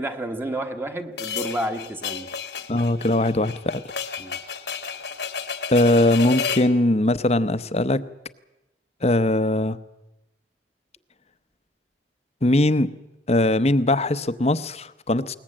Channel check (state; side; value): normal; both; correlation 0.56